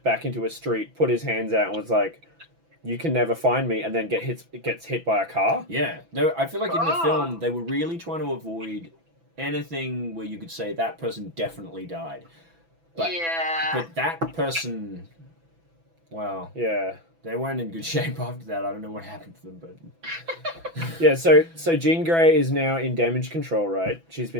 back into a street, put his hands out, and was like, "You can never find me," and then gets hit by a car. Yeah, I feel like in the film they were really trying to avoid anything where you could say that person definitely died. But that person, well, Yeah. they weren't in good shape after that. I don't know what happened to them, but Yeah, so Jean Grey is now in damage control, right? She's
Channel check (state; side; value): late; left; 6.0 ms